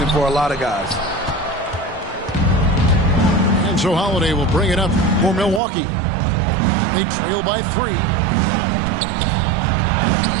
for a lot of guys. And so Holiday will bring it up for Milwaukee. They trail by 3.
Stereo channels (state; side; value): drops out; left; at 5.6 s